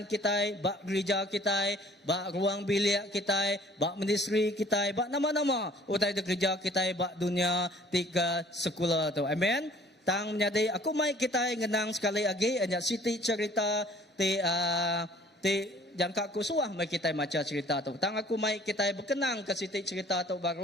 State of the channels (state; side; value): normal; both; correlation 0.53